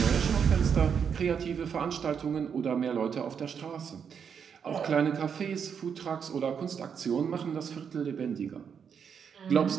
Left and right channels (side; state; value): left; quieter; 7.1 dB